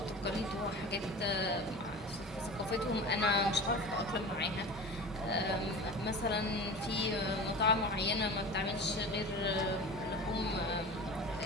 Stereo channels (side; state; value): both; normal; correlation 0.33